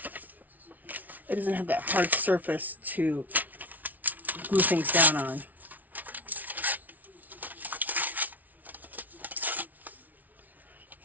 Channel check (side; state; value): left; late; 0.077 ms